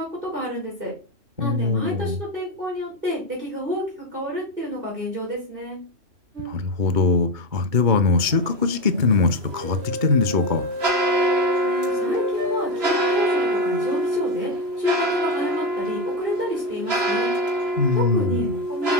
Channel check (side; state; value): left; late; 2.3 ms